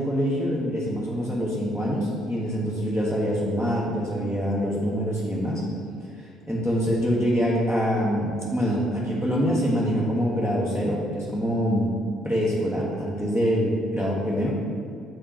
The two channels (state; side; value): normal; both; correlation 0.72